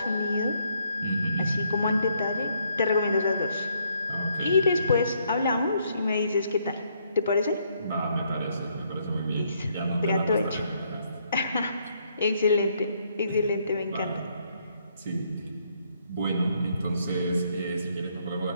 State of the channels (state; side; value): inverted; both; correlation -0.71